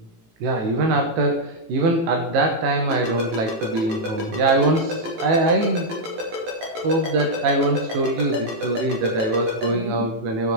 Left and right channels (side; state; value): left; late; 18 ms